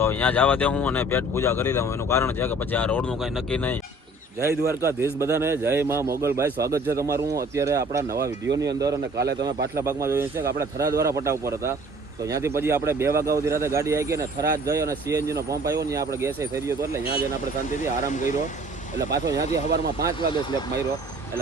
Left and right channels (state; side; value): normal; both; correlation 0.52